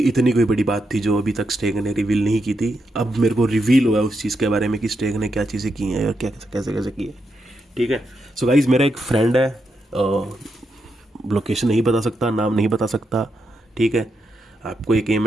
इतनी कोई बड़ी बात थी जो अभी तक स्टेक ने रिवील नहीं की थी। अब मेरे को रिवील हुआ उस चीज़ के बारे में कि स्टेक ने क्या चीज़ें की हैं और क्या कैसे कैसे की है। ठीक है। सो गाइज, मेरा एक फ्रेंड है, लोकेशन नहीं बता सकता, नाम नहीं बता सकता। ठीक है। आपको एक एम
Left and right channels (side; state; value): both; normal; correlation 0.84